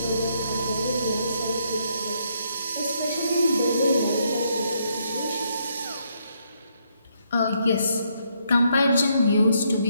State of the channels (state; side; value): inverted; both; correlation -0.74